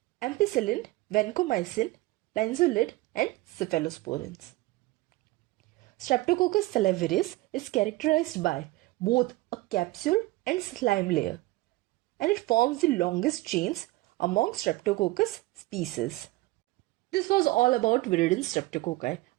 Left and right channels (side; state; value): left; quieter; 19.6 dB